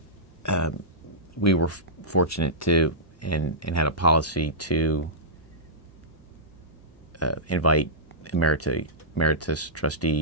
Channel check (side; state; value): both; normal; correlation -0.15